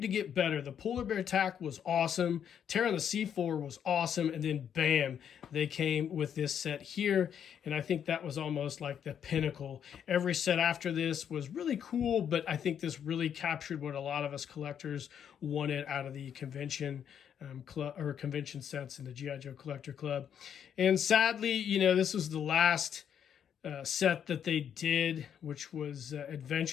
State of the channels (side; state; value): right; quieter; 8.6 dB